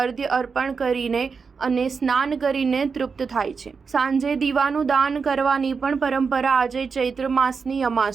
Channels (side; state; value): left; quieter; 5.3 dB